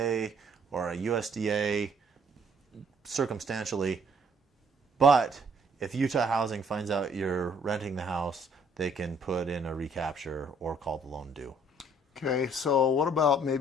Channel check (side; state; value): both; normal; correlation 0.62